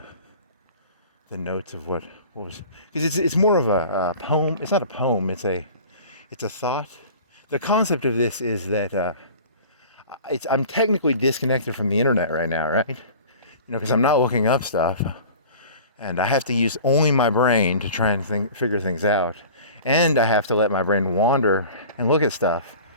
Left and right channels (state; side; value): inverted; both; correlation -0.42